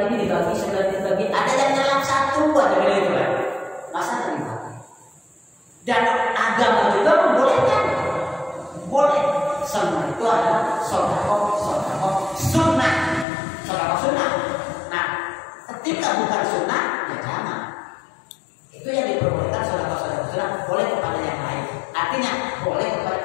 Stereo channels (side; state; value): right; drops out; at 13.2 s